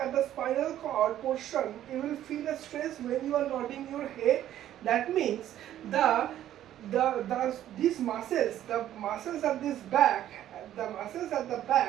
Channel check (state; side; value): quieter; left; 12.0 dB